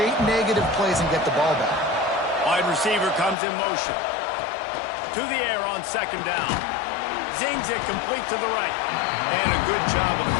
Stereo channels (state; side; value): drops out; right; at 3.4 s